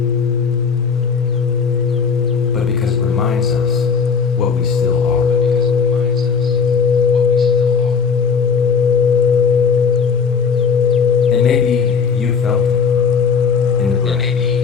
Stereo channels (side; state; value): right; quieter; 5.8 dB